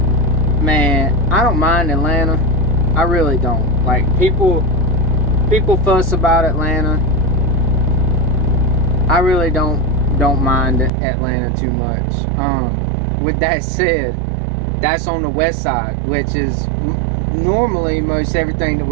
man, I don't mind Atlanta. I really don't. Like, people fuss about Atlanta. I really don't mind Atlanta too much. With that said, that's on the west side, which is normally most everything that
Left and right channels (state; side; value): drops out; left; at 10.9 s